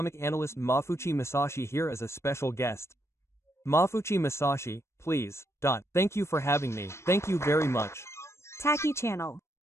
analyst Mafuchi Masashi here as a special guest. Mafuchi Masashi, please. Thank you for having me. Thank you very much. Taki channel.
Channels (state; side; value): late; right; 0.13 ms